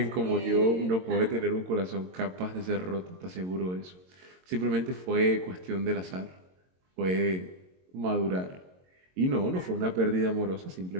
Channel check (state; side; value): late; left; 22 ms